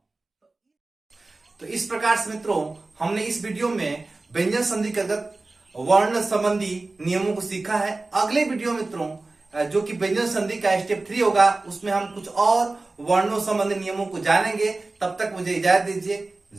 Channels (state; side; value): quieter; left; 3.3 dB